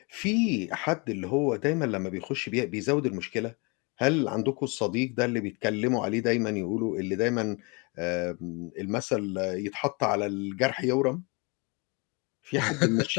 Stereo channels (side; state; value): right; quieter; 30.4 dB